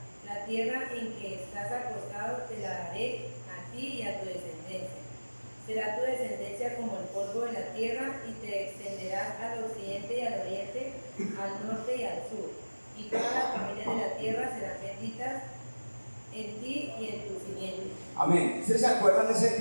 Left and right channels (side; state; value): both; inverted; correlation -1.00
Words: La tierra en que estás acostado te la daré a ti y a tu descendencia. Será tu descendencia como el polvo de la tierra, y te extenderás al occidente y al oriente, al norte y al sur. Y todas las familias de la tierra serán benditas en ti y en tu simiente. Amén. ¿Ustedes se acuerdan de ese